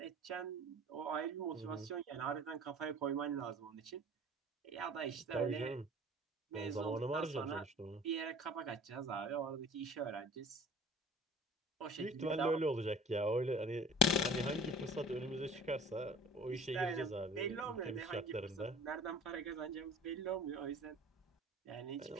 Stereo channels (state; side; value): normal; both; correlation 0.46